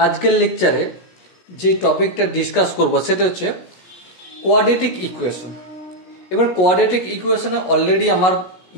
লেকচারে যে টপিকটা ডিসকাস করব সেটা হচ্ছে কোয়াড্রেটিক ইকুয়েশন। এবার কোয়াড্রেটিক ইকুয়েশনে অলরেডি আমার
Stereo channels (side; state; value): right; late; 17 ms